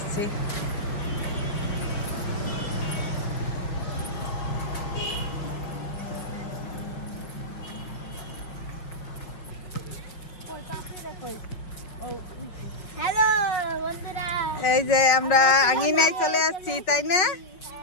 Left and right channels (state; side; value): late; right; 5.4 ms